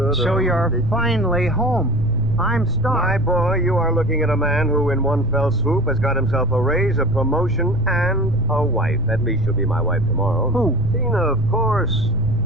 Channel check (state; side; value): noise; right; rumble, 6 dB below the sound